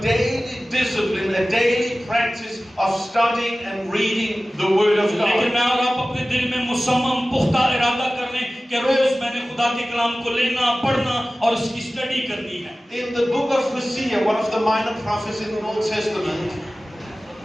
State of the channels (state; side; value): normal; both; correlation 0.97